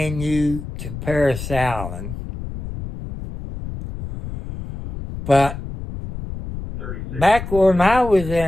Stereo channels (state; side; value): noise; left; rumble, 9 dB below the sound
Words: you to Paris Allen. But back when I was